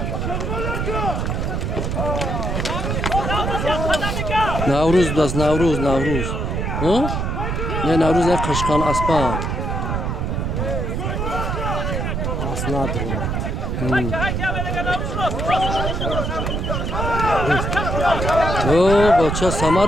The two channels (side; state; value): right; noise; rumble, 1 dB below the sound